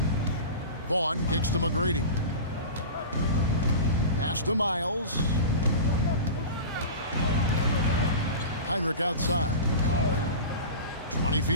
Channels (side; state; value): both; inverted; correlation -0.31